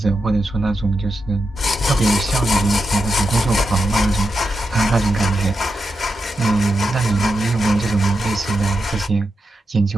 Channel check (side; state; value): both; normal; correlation 0.87